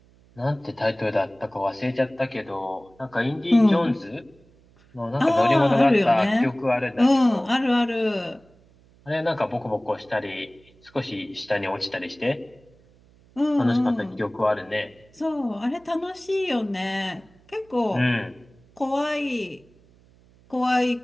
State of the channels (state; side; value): noise; right; hum, 29 dB below the sound